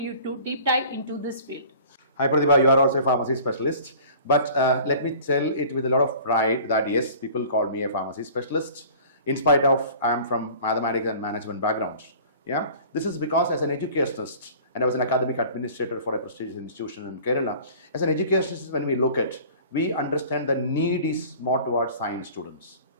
to deep dive into this field? Hi Pratibha, you are also a pharmacy specialist. But let me tell it with a lot of pride that yes, people call me a pharmacy specialist. In spite of I am from mathematics and management background. Yeah, this is because as an educationist, and I was an academic administrator for a prestigious institution in Kerala. As an educationist, when we look at, we understand the need is more towards science students,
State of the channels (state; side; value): inverted; both; correlation -0.45